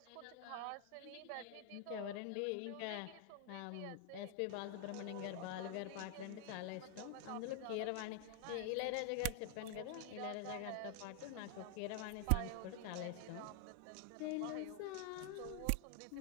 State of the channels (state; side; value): different; both; correlation 0.00